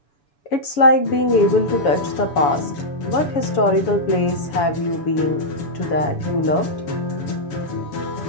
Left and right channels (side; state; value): right; late; 7.1 ms